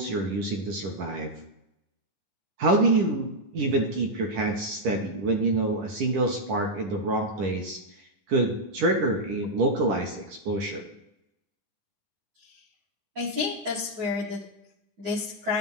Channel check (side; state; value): left; late; 10 ms